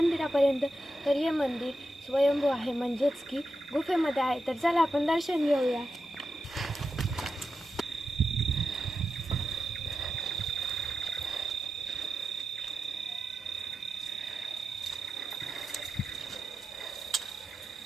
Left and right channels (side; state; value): both; normal; correlation 0.89